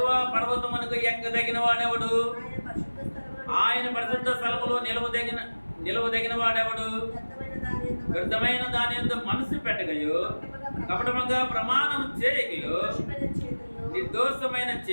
పర్వతమునకు ఎక్కదగిన వాడెవడు? ఆయన పరిశుద్ధ స్థలములో నిలవదగిన వాడెవడు? వ్యర్థమైన దాని యందు మనసు పెట్టగయో, కపటముగా ప్రమాణం చేయగయో, నిర్దోషమైన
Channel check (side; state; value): both; inverted; correlation -1.00